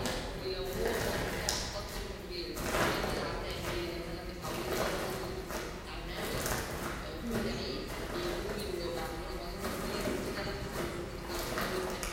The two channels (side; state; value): both; identical; correlation 1.00